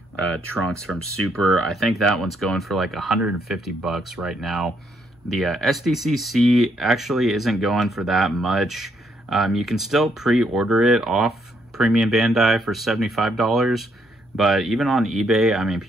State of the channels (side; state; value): both; normal; correlation 0.73